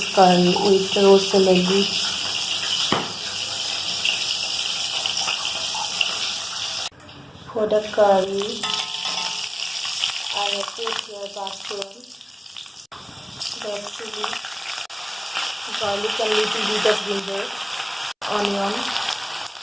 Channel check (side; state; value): both; identical; correlation 1.00